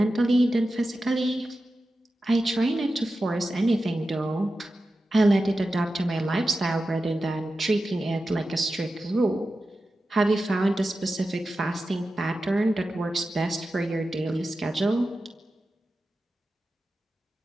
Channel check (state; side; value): normal; both; correlation 0.92